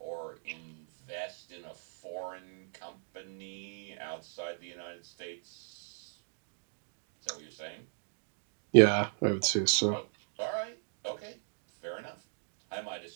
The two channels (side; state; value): left; silent; digital silence